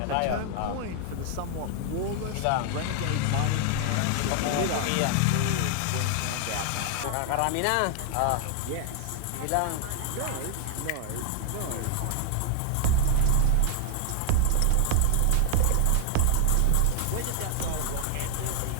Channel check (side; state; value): both; different; correlation 0.00